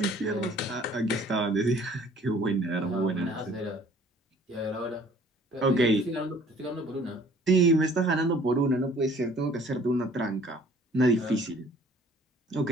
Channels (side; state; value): both; normal; correlation 0.55